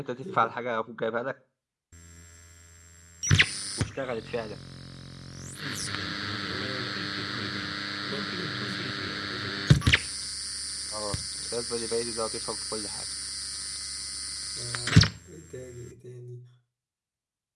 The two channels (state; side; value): identical; both; correlation 1.00